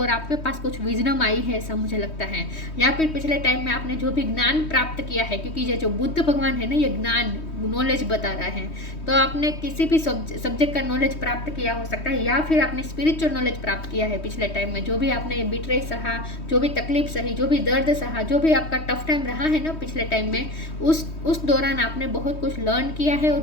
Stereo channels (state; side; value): late; right; 3.2 ms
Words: आपके पास कुछ विजडम आई है, ऐसा मुझे लगता है। या फिर पिछले टाइम में आपने जो भी ज्ञान प्राप्त किया है, क्योंकि ये जो बुद्ध भगवान है ना, ये ज्ञान नॉलेज बता रहा है, तो आपने किसी भी सब्जेक्ट का नॉलेज प्राप्त किया हो सकता है, या फिर आपने स्पिरिचुअल नॉलेज प्राप्त किया है पिछले टाइम में। जो भी आपने ये बिट्रे सहा, जो भी तकलीफ सही, जो भी दर्द सहा, जो भी आपका टफ टाइम रहा है ना पिछले टाइम में, उस दौरान आपने बहुत कुछ लर्न किया है और